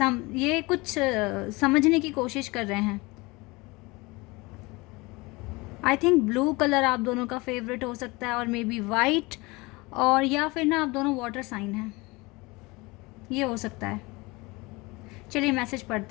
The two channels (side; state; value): right; quieter; 24.1 dB